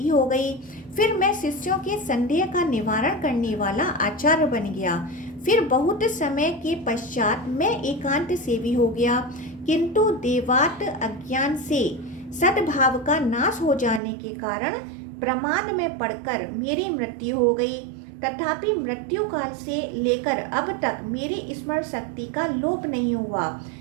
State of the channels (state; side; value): drops out; left; at 14.0 s